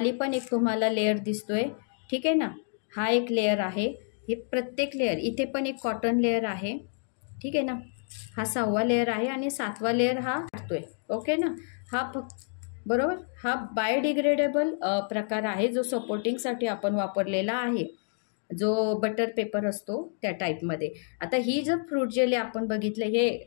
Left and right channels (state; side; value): silent; right; 59 dB below the other